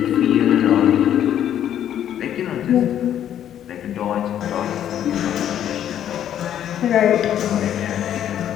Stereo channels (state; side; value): quieter; right; 10.5 dB